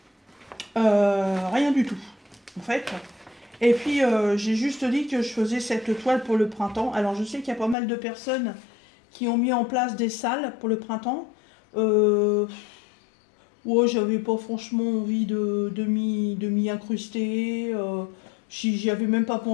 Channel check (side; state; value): right; drops out; at 7.8 s